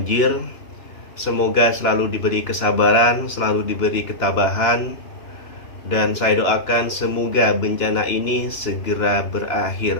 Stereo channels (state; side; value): late; right; 2.9 ms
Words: semoga selalu diberi kesabaran, selalu diberi ketabahan, dan saya doakan semoga bencana ini segera